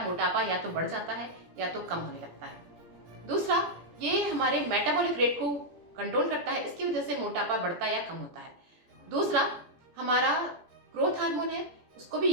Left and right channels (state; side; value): late; left; 17 ms